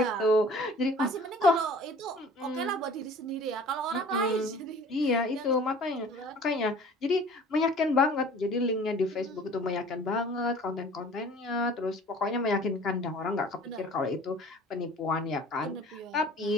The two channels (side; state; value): both; normal; correlation 0.47